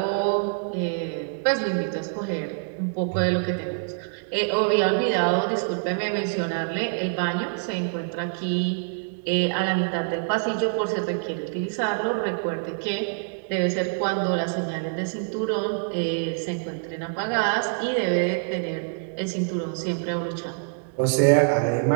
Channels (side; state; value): left; silent; digital silence